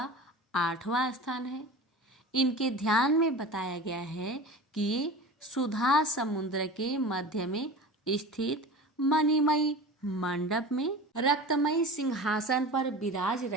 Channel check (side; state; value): both; normal; correlation 0.34